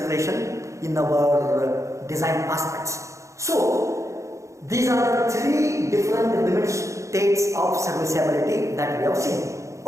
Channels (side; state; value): left; late; 0.15 ms